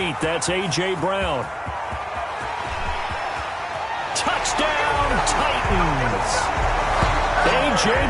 That's A.J. Brown. Touchdown, Titans. A.J.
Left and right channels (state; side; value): identical; both; correlation 1.00